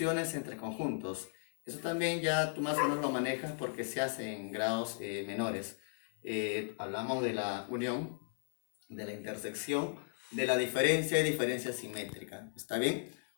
entre conjuntos. Eso también ya tú más o menos lo manejas porque se hace en grados menores. Hablamos de la unión, de la intersección, de la diferencia y diferencia simétrica. ¿Está bien?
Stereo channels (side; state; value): right; silent; 54 dB below the other